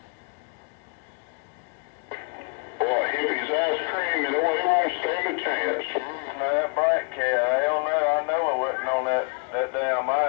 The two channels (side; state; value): right; quieter; 37.7 dB